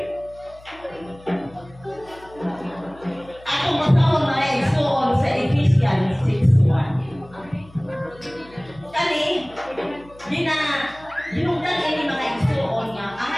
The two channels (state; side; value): noise; left; hum, 23 dB below the sound